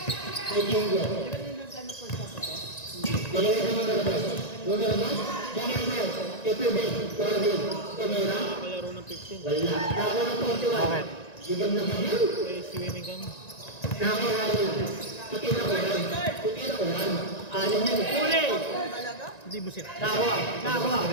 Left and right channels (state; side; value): late; right; 1.9 ms